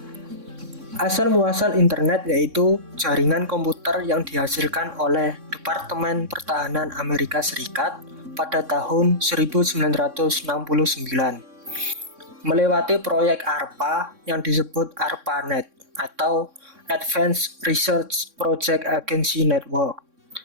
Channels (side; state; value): left; late; 3.6 ms